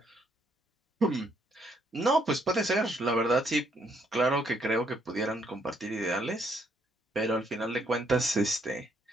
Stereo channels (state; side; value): normal; both; correlation 0.71